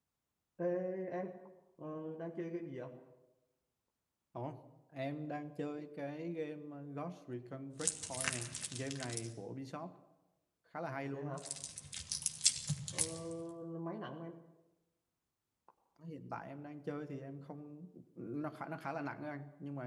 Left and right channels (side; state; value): both; identical; correlation 1.00